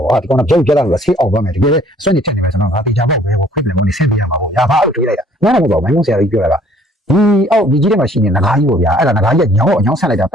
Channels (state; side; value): normal; both; correlation 0.58